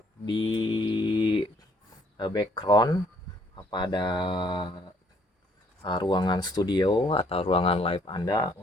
di background pada ruangan studio atau ruangan live Anda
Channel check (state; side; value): normal; both; correlation 0.64